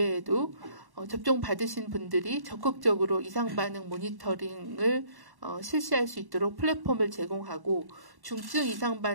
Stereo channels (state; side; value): late; left; 1.1 ms